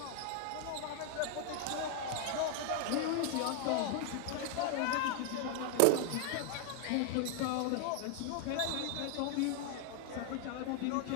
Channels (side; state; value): both; different; correlation 0.00